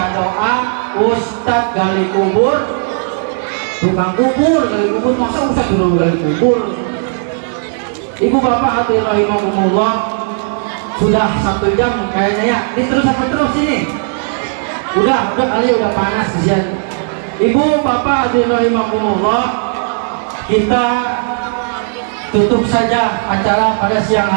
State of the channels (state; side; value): silent; left; digital silence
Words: doa, Ustadz gali kubur. Tukang kubur, gali kubur, masa Ustadz dulu gali kubur? Ibu bapak hati rahimahumullah, sudah 1 jam kayaknya ya. Ini terus apa terus ini? Udah kali udah panas kesian. Ibu bapak hati rahimahumullah, kita tutup saja acara pada siang